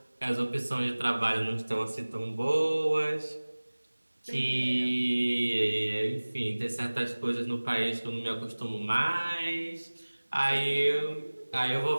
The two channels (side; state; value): both; inverted; correlation -1.00